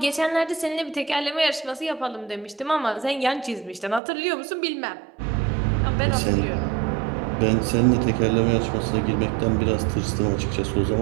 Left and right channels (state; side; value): drops out; left; at 4.0 s